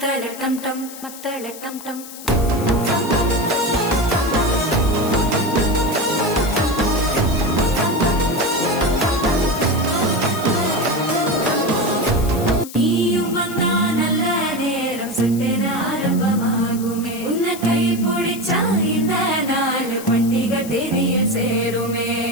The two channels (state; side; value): noise; left; hiss, 14 dB below the sound